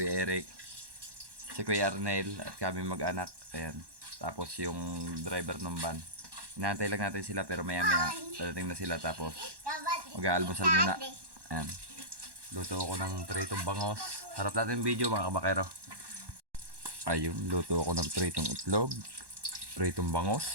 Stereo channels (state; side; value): late; left; 1.1 ms